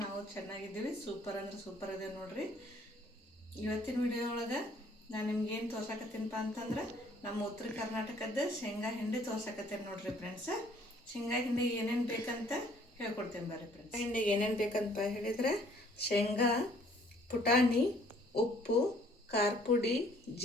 ನಾವು ಚೆನ್ನಾಗಿದ್ದೀವಿ. ಸೂಪರ್ ಅಂದ್ರೆ ಸೂಪರ್ ಇದೆ ನೋಡ್ರಿ. ಇವತ್ತಿನ ವಿಡಿಯೋ ಒಳಗೆ ನಾನು ನಿಮ್ಗೇನು ತೋರ್ಸಕತ್ತೀನಪ್ಪ ಅಂತಂದ್ರೆ ನಮ್ಮ ಉತ್ತರ ಕರ್ನಾಟಕದ ಶೇಂಗಾ ಹಿಂಡಿ ತೋರ್ಸಕತ್ತೇನೆ ನೋಡ್ರಿ ಫ್ರೆಂಡ್ಸ್. ಶೇಂಗಾ ಹಿಂಡಿ ಏನೇನು ಬೇಕಂತ ಹೇಳ್ಕೊಡ್ತೇನೆ ಬರ್ರಿ ಫ್ರೆಂಡ್ಸ್. ಹಿಂಡಿಗೆ ಏನೇನು ಬೇಕಂತ ಹೇಳಿದ್ರೆ ಶೇಂಗಾ, ಪುಟಾಣಿ, ಉಪ್ಪು, ಖಾರ ಪುಡಿ,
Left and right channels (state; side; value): normal; both; correlation 0.59